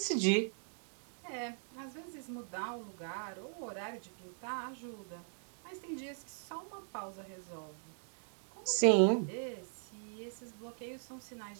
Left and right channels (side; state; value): left; silent; digital silence